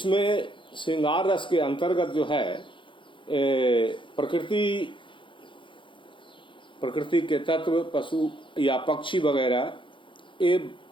श्रृंगार रस के अंतर्गत जो है प्रकृति के तत्व, पशु या पक्षी वगैरह ये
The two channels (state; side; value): late; right; 0.24 ms